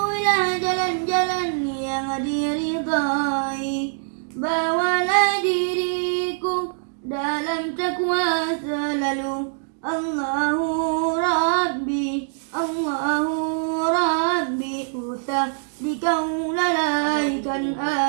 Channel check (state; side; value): silent; left; digital silence